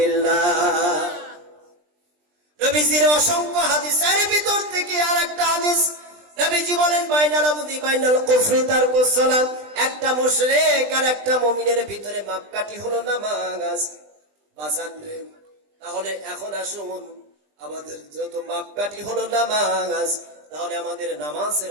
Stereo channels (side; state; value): left; late; 20 ms